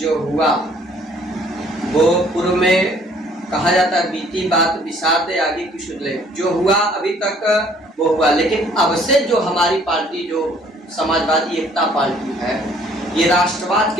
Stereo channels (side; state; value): both; normal; correlation 0.59